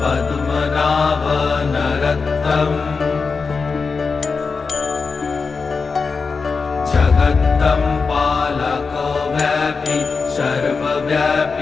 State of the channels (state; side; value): quieter; right; 4.8 dB